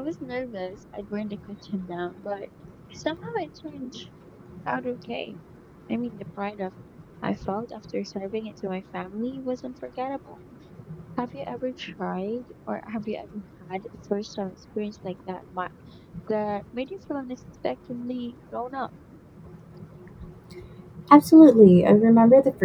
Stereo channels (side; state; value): both; identical; correlation 1.00